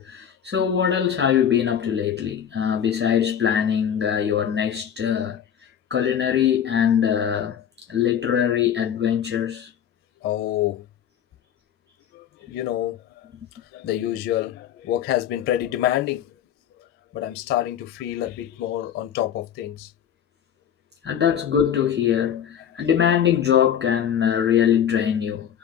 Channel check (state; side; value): quieter; right; 9.1 dB